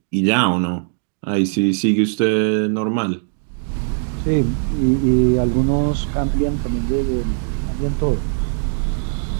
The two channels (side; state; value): left; silent; digital silence